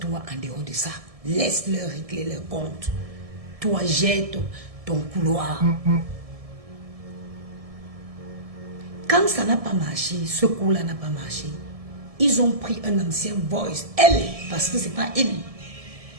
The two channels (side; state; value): left; late; 1.7 ms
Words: en dehors de ça. Laisse-leur régler leur compte. Toi, jette ton couloir. Quand ça n'a pas marché, ce coup-là n'a pas marché, ils ont pris un ancien voice. Elle, parce que ce n'est pas elle.